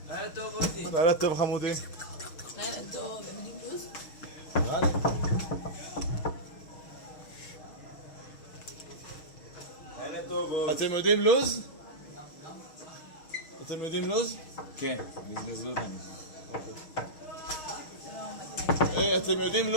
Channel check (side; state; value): right; late; 6.4 ms